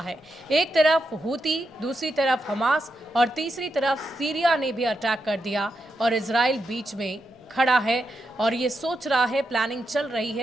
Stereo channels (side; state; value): both; normal; correlation 0.85